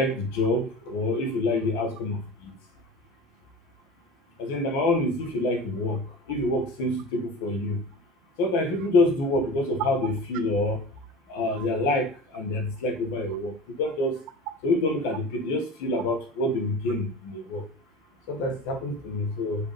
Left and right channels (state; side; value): normal; both; correlation 0.34